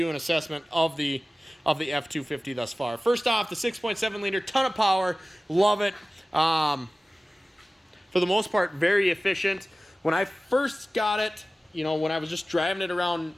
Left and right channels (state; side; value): normal; both; correlation 0.96